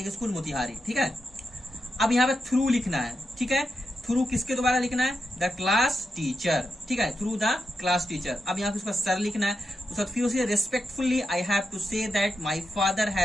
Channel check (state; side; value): normal; both; correlation 0.87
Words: स्कूल मोतिहारी, ठीक है। अब यहाँ पे थ्रू लिखना है, ठीक है। थ्रू किसके द्वारा लिखना है, द क्लास टीचर, ठीक है, थ्रू द क्लास टीचर। अब यहाँ पे उसका सर लिखना है, उसके बाद फिर उसे respectfully I have to say that my father